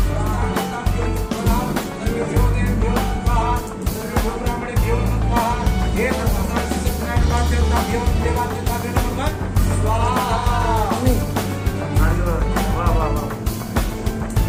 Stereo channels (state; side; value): identical; both; correlation 1.00